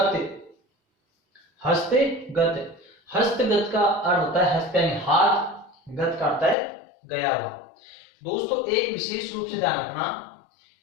हस्तगत, हस्तगत का अर्थ होता है हस्त यानी हाथ, गत का अर्थ है गया हुआ। दोस्तों एक विशेष रूप से ध्यान रखना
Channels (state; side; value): drops out; right; at 6.6 s